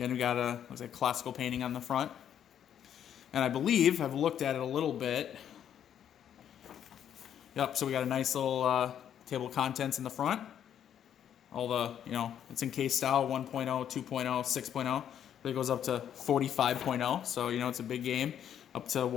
we got looks like classical painting on the front. And I believe I've looked at it a little bit. Yep, so we got a nice little table of contents in the front. All the, it's in case style, 1.0, 2.0, 6.0. But it goes up to 45.0. So, it's a big game. Up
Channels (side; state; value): right; quieter; 9.6 dB